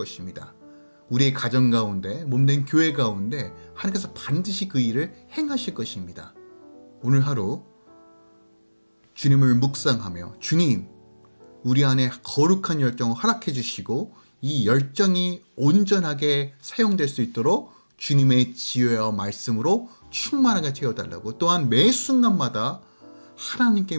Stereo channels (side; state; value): both; inverted; correlation -1.00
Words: 우리의 가정 가운데 몸된 교회 가운데 하나님께서 반드시 그 일을 행하실 것입니다. 오늘 하루 주님을 묵상하며 주님, 우리 안에 거룩한 열정을 허락해 주시고 이 열정이 온전하게 사용될 수 있도록 주님의 지혜와 말씀으로 충만하게 채워달라고, 또한 매 순간마다